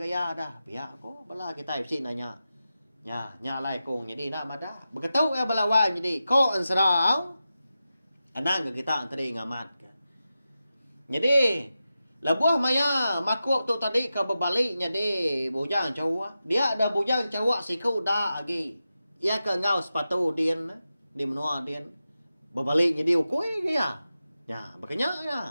dah. Pihak ko bala kita bisik nanya. Nyalai kong jadi nak madah. Begitu ya balawan jadi ko ansrau. Anang kita tadi ngamat ke. Jadi labuah maya makuk tu tadi ke berbalik jadi bujang cawak. Dia ada bujang cawak siku dah agi. Ia ke ngau sepatu din di menua din. Berbalik jadi ukui ke ya. Ya, makanya ya.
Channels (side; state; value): both; inverted; correlation -0.92